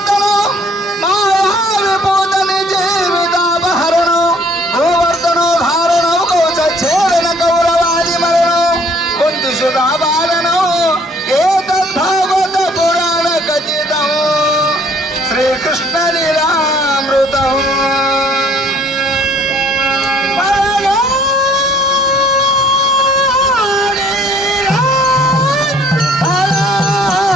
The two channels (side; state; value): both; normal; correlation 0.59